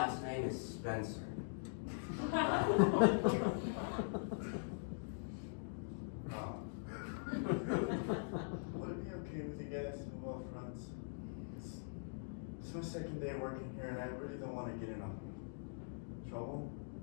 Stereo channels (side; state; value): right; silent; digital silence